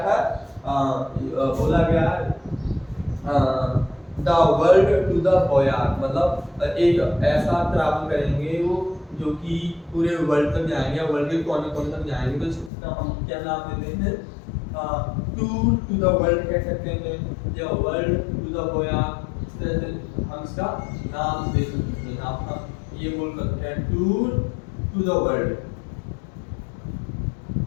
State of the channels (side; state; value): right; drops out; at 12.7 s